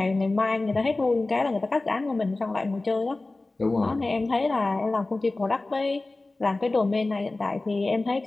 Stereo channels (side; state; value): right; quieter; 3.1 dB